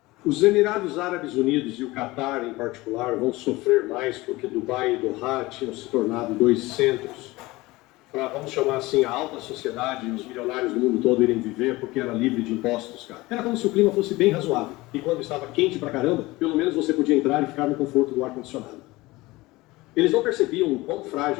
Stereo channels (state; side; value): quieter; right; 20.5 dB